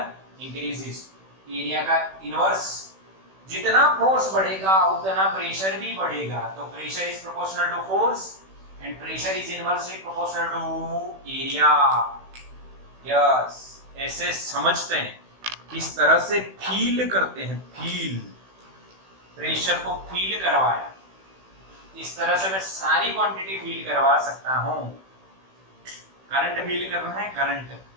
increases. Area का इनवर्स, जितना फोर्स बढ़ेगा उतना प्रेशर भी बढ़ेगा। तो pressure is proportional to force and pressure is inversely proportional to area. Yes, ऐसे समझते हैं, इस तरह से फील करते हैं। फील, प्रेशर को फील करवाया, इस तरह से मैं सारी क्वांटिटी फील करवा सकता हूं। करंट फील करना है, करंट।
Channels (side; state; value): left; late; 16 ms